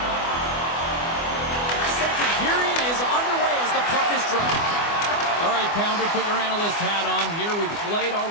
pounder, put your analyst hat on here. We've played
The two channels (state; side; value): late; right; 24 ms